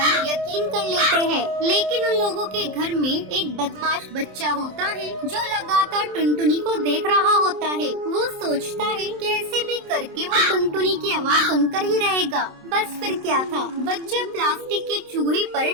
यकीन कर लेते हैं, लेकिन उन लोगों के घर में एक बदमाश बच्चा होता है जो लगातार टुनटुनी को देख रहा होता है। वो सोचता है कैसे भी करके वो टुनटुनी की आवाज सुनकर ही रहेगा। बस फिर क्या था, बच्चा प्लास्टिक के चूहे पर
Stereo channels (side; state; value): left; late; 27 ms